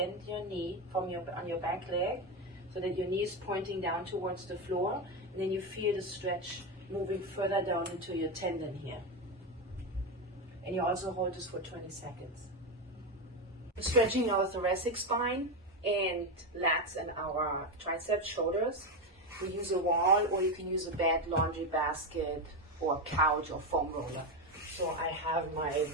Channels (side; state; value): both; normal; correlation 0.12